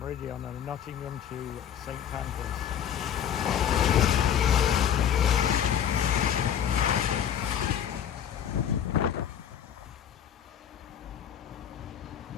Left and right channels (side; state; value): right; quieter; 9.2 dB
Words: on Nottingham to St Pancras.